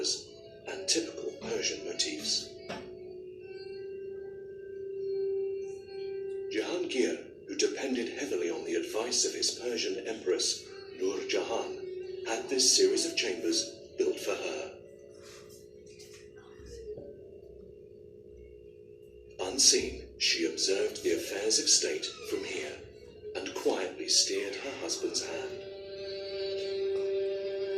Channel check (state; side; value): identical; both; correlation 1.00